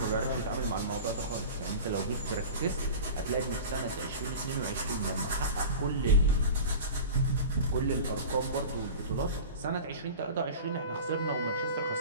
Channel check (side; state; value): both; inverted; correlation -0.34